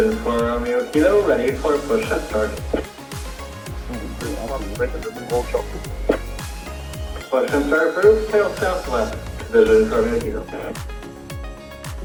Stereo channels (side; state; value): both; identical; correlation 1.00